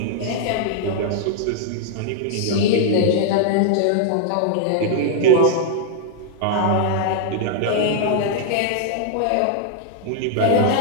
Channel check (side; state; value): both; different; correlation -0.01